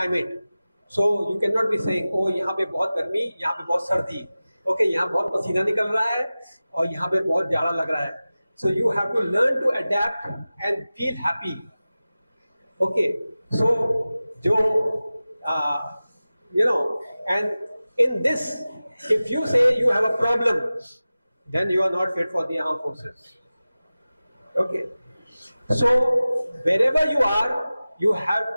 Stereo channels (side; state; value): both; inverted; correlation -0.96